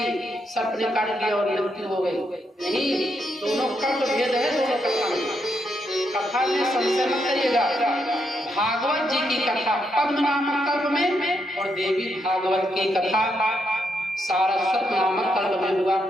सर्प ने काट लिया और मृत्यु हो गई। नहीं, दोनों कल्प भेद है, दोनों कथा में। कथा में संशय मत करिएगा। भागवत जी की कथा पद्म नामक कल्प में, और देवी भागवत की कथा सारस्वत नामक कल्प में हुआ।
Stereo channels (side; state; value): both; normal; correlation 0.79